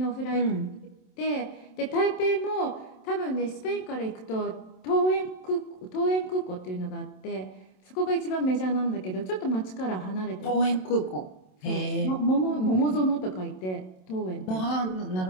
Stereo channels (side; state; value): right; late; 27 ms